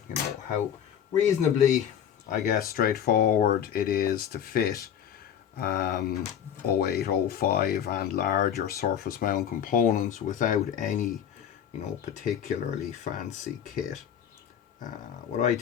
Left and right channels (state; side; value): quieter; right; 9.0 dB